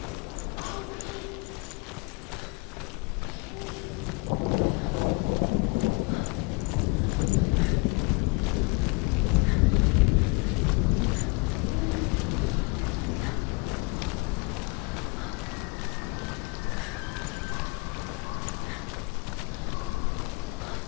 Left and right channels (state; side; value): quieter; right; 27.9 dB